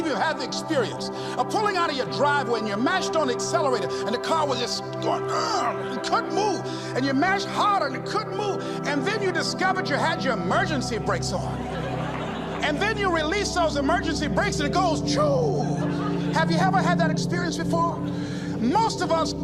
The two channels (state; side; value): identical; both; correlation 1.00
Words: you have the experience of pulling out of your driveway and you mashed on the accelerator and the car was just going, it couldn't move, and you mashed harder and it couldn't move, and then you discovered you had your emergency brakes on, and then you release those emergency brakes and it goes, choo. Have you ever had that experience before? Most of us